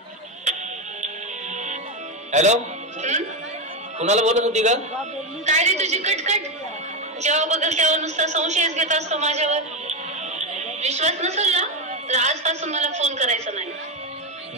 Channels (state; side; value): normal; both; correlation 0.11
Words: हॅलो, कुणाला बोलत होती का? काय रे तुझी कटकट? जेव्हा बघल तेव्हा नुसता संशयच घेत असतो माझ्यावर. विश्वास नसेल ना तर आजपासून मला फोन करायचा